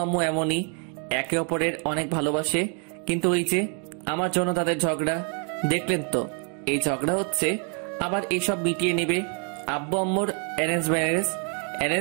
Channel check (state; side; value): quieter; left; 39.5 dB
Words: আম্মু এমনই, একে অপরের অনেক ভালোবাসে, কিন্তু ওই যে আমার জন্য তাদের ঝগড়া। দেখলেন তো, এই ঝগড়া হচ্ছে, আবার এইসব মিটিয়ে নেবে। আব্বু আম্মুর অ্যারেঞ্জ